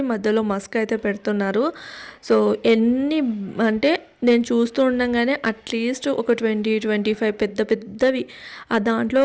మధ్యలో మస్క్ అయితే పెడుతున్నారు. సో ఎన్ని అంటే నేను చూస్తూ ఉండగానే అట్లీస్ట్ ఒక 20-25 పెద్ద పెద్దవి, ఆ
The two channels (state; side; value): identical; both; correlation 1.00